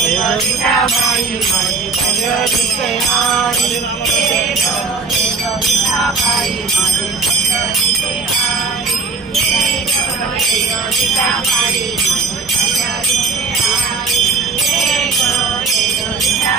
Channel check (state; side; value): quieter; left; 4.6 dB